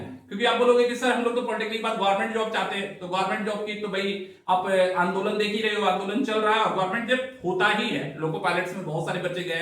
हैं, क्योंकि आप बोलोगे कि सर हम लोग तो पॉलिटेक्निक के बाद गवर्नमेंट जॉब चाहते हैं, तो गवर्नमेंट जॉब की तो भाई आप आंदोलन देख ही रहे हो, आंदोलन चल रहा है और गवर्नमेंट जब होता ही है। लोको पायलट्स में बहुत सारे बच्चे गए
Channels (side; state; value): both; identical; correlation 1.00